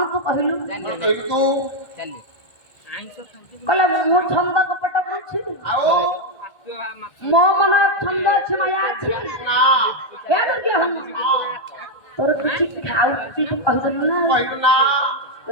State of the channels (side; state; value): right; late; 1.8 ms